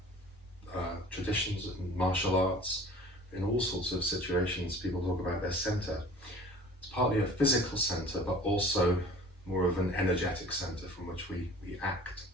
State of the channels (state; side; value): normal; both; correlation 0.45